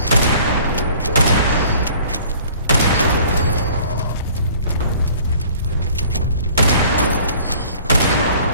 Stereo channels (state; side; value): inverted; both; correlation -0.51